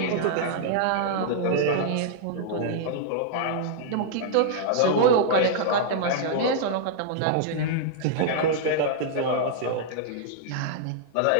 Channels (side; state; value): both; different; correlation -0.01